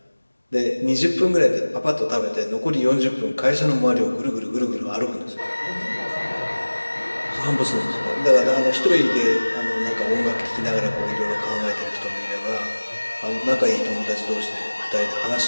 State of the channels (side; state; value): both; inverted; correlation -1.00